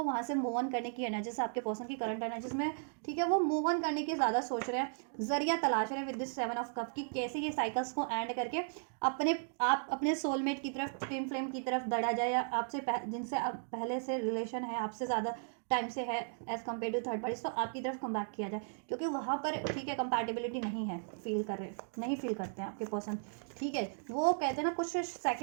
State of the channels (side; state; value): left; silent; digital silence